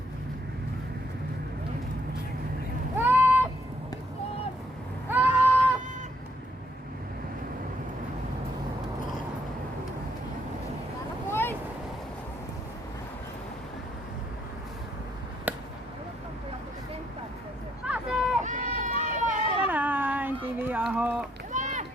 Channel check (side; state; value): both; normal; correlation 0.71